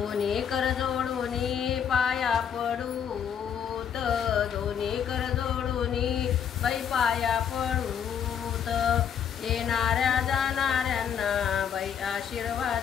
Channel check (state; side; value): quieter; right; 8.2 dB